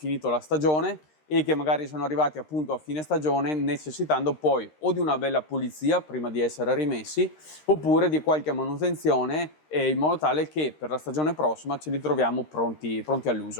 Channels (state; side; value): late; right; 13 ms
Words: la stagione e che magari sono arrivati appunto a fine stagione, necessitando poi o di una bella pulizia prima di essere rimessi, oppure di qualche manutenzione in modo tale che per la stagione prossima ce li troviamo pronti